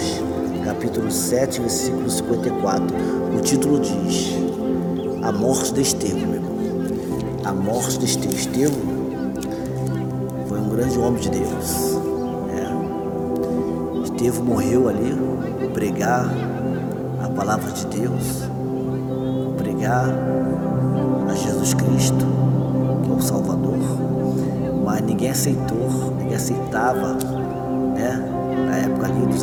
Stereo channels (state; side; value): identical; both; correlation 1.00